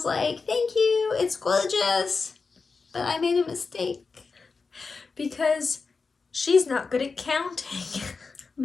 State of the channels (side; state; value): right; quieter; 4.6 dB